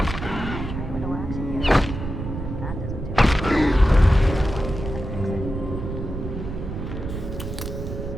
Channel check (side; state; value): right; noise; rumble, 6 dB below the sound